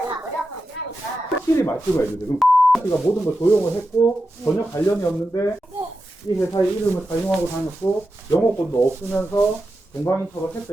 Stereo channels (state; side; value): normal; both; correlation 0.90